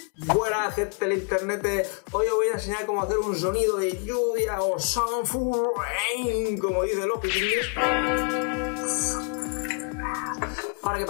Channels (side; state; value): right; quieter; 38.5 dB